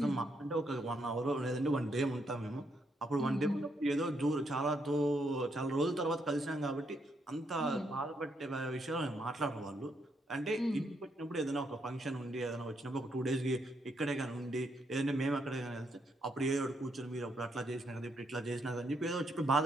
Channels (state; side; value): normal; both; correlation 0.76